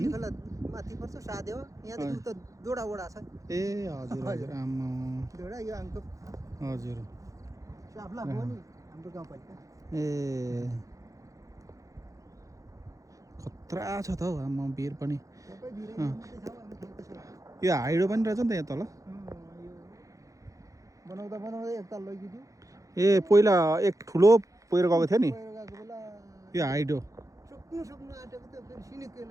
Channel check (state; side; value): late; left; 0.16 ms